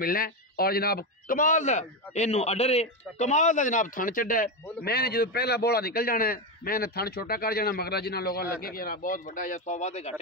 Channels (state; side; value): normal; both; correlation 0.11